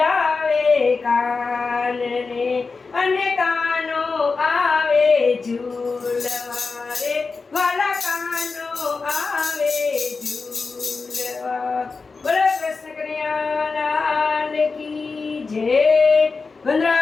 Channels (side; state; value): right; quieter; 4.4 dB